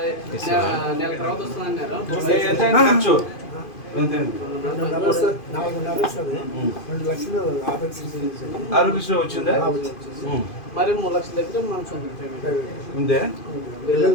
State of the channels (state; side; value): late; right; 2.5 ms